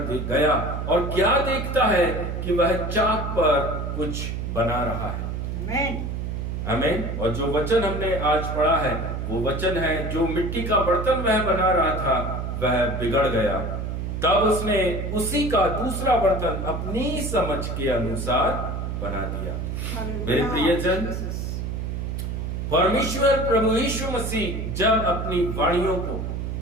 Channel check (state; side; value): noise; right; hum, 4 dB below the sound